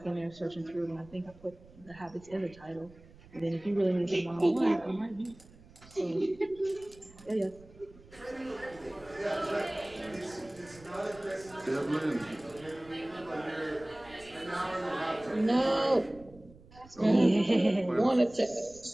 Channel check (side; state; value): right; noise; rumble, 23 dB below the sound